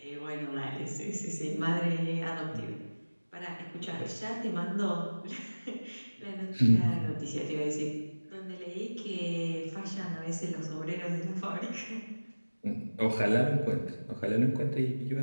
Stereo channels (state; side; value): inverted; both; correlation -1.00